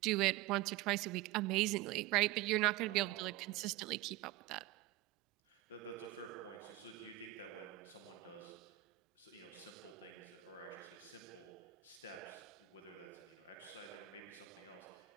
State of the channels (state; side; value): quieter; left; 17.2 dB